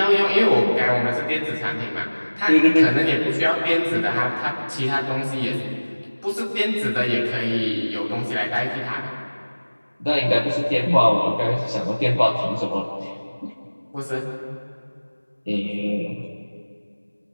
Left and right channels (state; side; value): inverted; both; correlation -1.00